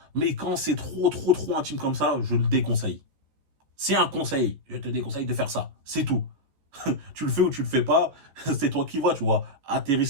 Mais quand c'est trop intime comme ça, je le déconseille. C'est un conseil. Je te déconseille de faire ça. C'est tout. Tu le fais ou tu le fais pas, c'est toi qui vois, tu vois. À tes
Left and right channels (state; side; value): late; left; 14 ms